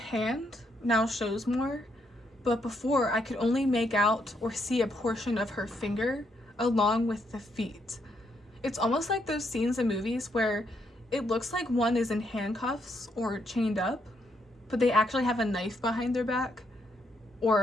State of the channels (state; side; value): normal; both; correlation 0.76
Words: now shows more, but before I could only make out or see a portion of her finger along with the feet. It's almost like those scenes in movies where it looks like one is in handcuffs or chained up, but they actually have a knife behind their back or